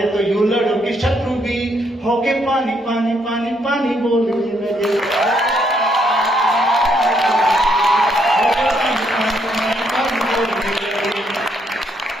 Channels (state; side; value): normal; both; correlation 0.73